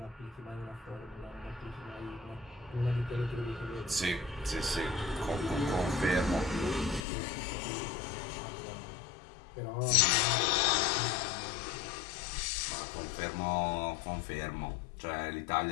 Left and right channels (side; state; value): right; drops out; at 7.1 s